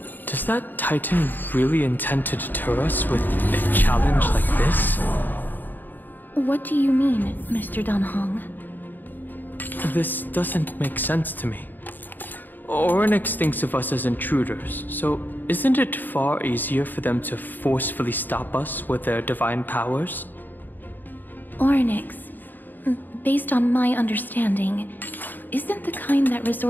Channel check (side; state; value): right; late; 0.088 ms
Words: Does that Titan really intend to deter us with a challenge like this? What do you mean, Mr. Danhong? This doesn't make sense to me. Orynyx thinks of us as intruders, so isn't it far easier for them to forcefully stop us with their divine powers? Orynyx, based on my understanding, isn't the kind that